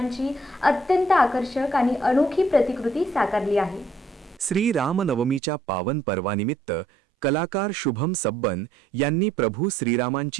अत्यंत आकर्षक आणि अनोखी प्रतिकृती साकारली आहे। श्रीरामनवमीच्या पावन पर्वानिमित्त कलाकार शुभम सब्बन यांनी प्रभू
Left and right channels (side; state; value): left; drops out; at 5.4 s